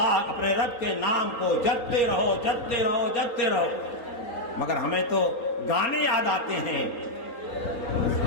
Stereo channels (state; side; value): late; right; 3.9 ms